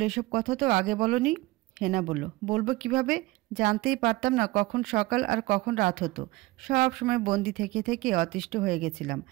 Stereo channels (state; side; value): quieter; left; 20.3 dB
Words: এসব কথা তো আগে বলনি। হেনা বলল, বলবো কিভাবে, জানতেই পারতাম না কখন সকাল আর কখন রাত হতো, সব সময় বন্দি থেকে থেকে অতিষ্ঠ হয়ে গেছিলাম।